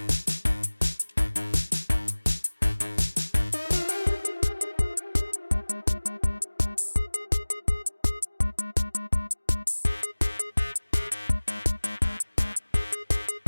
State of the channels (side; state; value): both; inverted; correlation -1.00